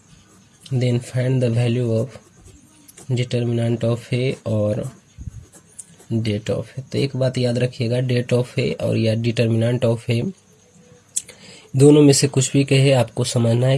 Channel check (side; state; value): both; identical; correlation 1.00